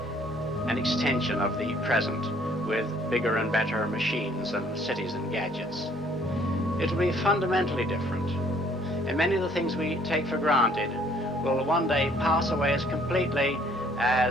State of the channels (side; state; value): both; normal; correlation 0.61